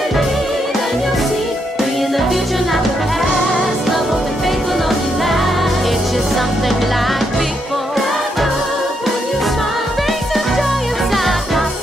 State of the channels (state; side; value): normal; both; correlation 0.79